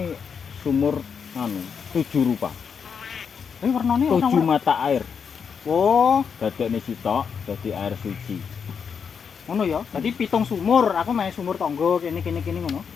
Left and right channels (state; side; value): quieter; right; 6.5 dB